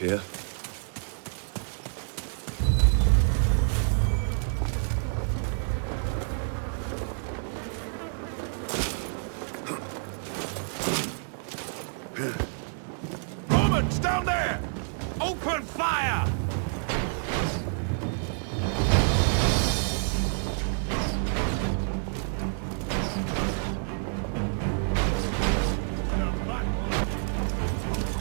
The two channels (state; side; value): silent; left; digital silence